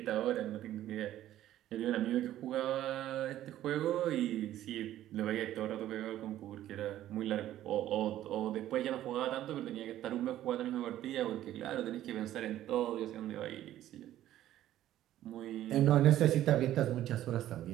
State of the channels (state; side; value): quieter; left; 13.0 dB